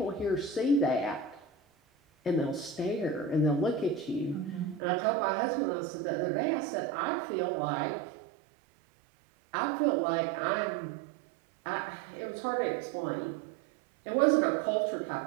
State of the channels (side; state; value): left; drops out; at 4.8 s